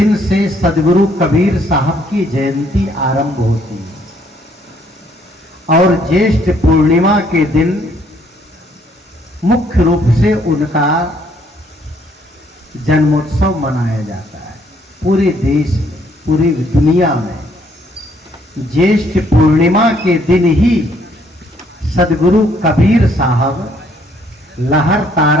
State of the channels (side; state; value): both; normal; correlation 0.66